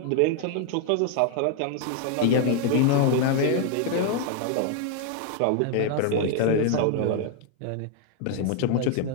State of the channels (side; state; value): both; different; correlation 0.00